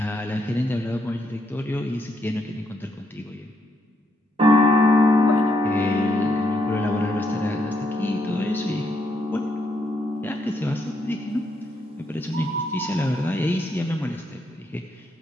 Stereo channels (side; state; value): both; normal; correlation 0.76